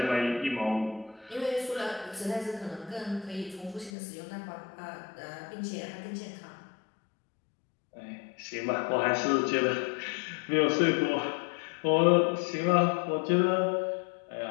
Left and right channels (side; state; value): right; drops out; at 3.9 s